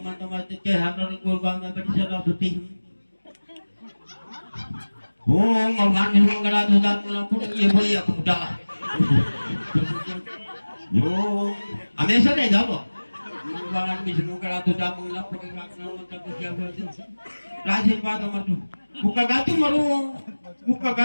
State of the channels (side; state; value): both; inverted; correlation -1.00